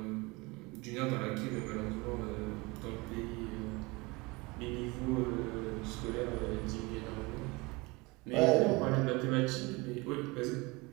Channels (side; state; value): left; quieter; 24.6 dB